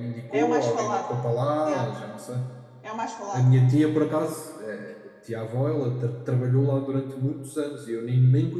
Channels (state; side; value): identical; both; correlation 1.00